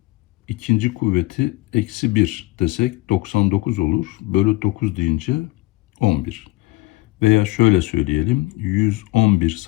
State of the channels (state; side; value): quieter; right; 19.8 dB